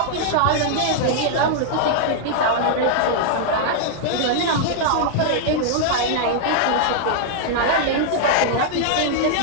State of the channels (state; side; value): different; both; correlation -0.01